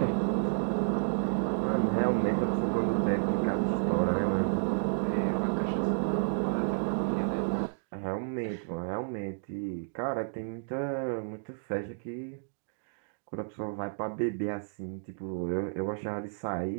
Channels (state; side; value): silent; left; digital silence